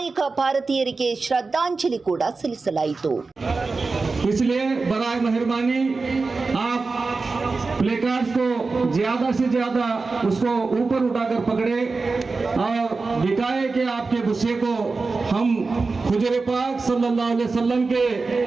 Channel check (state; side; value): quieter; left; 4.0 dB